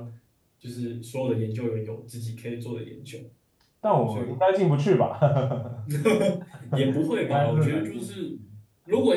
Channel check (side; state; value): both; identical; correlation 1.00